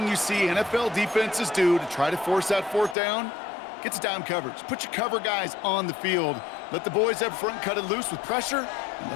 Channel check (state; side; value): drops out; right; at 3.0 s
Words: you see NFL defenses do to try to force that 4th down, gets down coverage. Put your cover guys on the field. Let the boys up front cut it loose with pressure, and